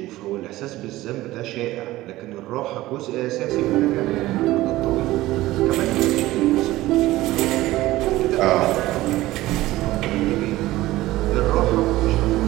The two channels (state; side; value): quieter; left; 17.0 dB